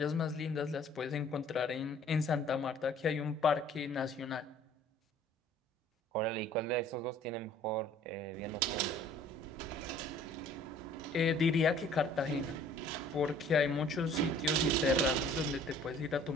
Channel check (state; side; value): normal; both; correlation 0.53